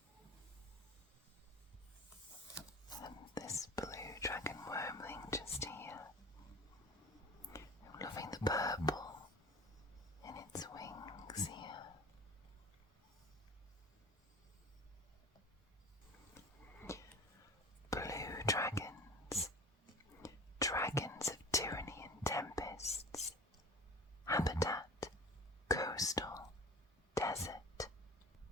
And this blue dragon wormling just here. I'm loving the purple in its wings here. Blue dragons. Dragons of tyranny and tempests. Habitat:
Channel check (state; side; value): normal; both; correlation 0.38